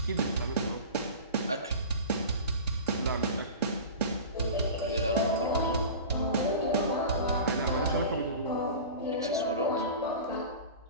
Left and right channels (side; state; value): both; inverted; correlation -0.35